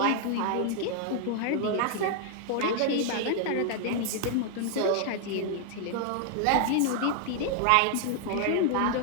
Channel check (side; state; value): both; different; correlation 0.00